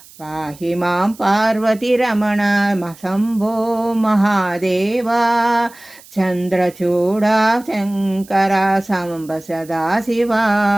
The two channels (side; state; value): right; noise; hiss, 23 dB below the sound